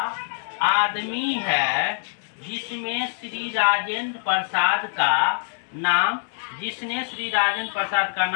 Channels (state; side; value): silent; right; digital silence